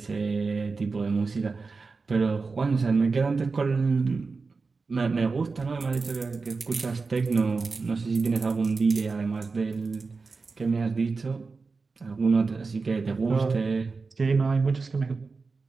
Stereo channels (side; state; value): left; quieter; 4.3 dB